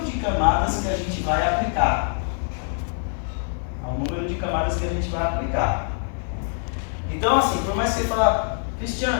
de camadas que a gente vai aplicar. Então assim, por mais que você fale,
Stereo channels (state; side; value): silent; right; 62 dB below the other